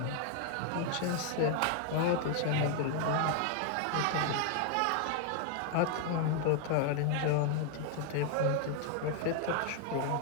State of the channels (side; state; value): both; different; correlation 0.00